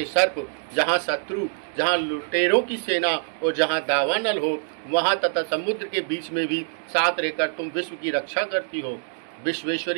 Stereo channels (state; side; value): silent; left; digital silence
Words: सर्प, जहाँ शत्रु, जहाँ लुटेरों की सेना और जहाँ दावानल हो, वहाँ तथा समुद्र के बीच में भी साथ रहकर तुम विश्व की रक्षा करती हो।